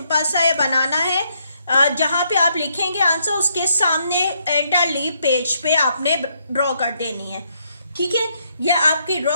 सा ये बनाना है। जहाँ पे आप लिखेंगे आंसर, उसके सामने एंटर लीव पेज पे आपने ड्रॉ कर देनी है। ठीक है, ये आपकी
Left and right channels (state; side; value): inverted; both; correlation -0.74